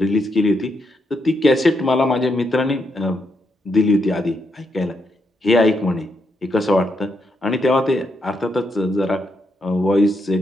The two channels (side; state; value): both; normal; correlation 0.80